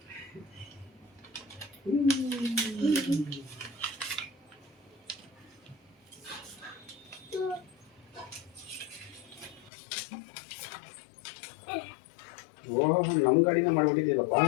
ನಮ್ ಗಾಡಿನ ಮಾಡ್ಬಿಟ್ಟಿದ್ಯಲ್ಲಪ್ಪ.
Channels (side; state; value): right; drops out; at 9.7 s